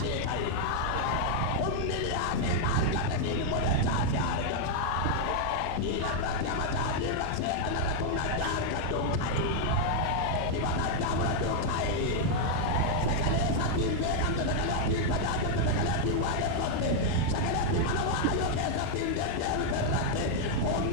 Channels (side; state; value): both; different; correlation 0.00